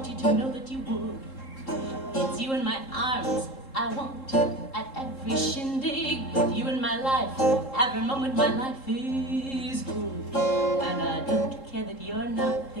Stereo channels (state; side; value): late; right; 3.7 ms